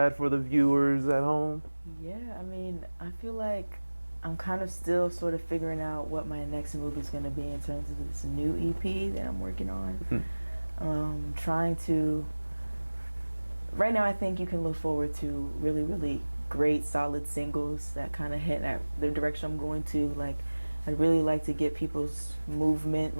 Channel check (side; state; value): both; inverted; correlation -1.00